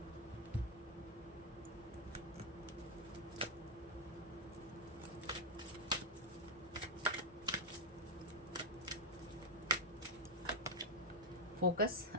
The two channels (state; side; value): normal; both; correlation 0.01